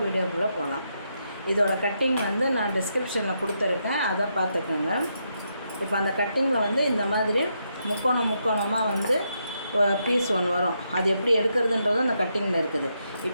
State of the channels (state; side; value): inverted; both; correlation -0.80